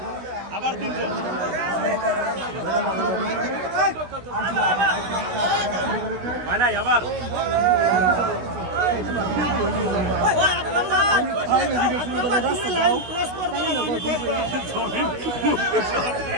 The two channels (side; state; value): left; late; 16 ms